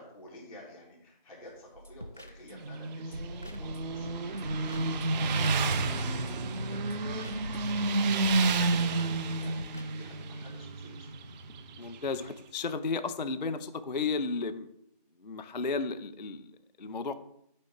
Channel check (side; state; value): both; inverted; correlation -0.55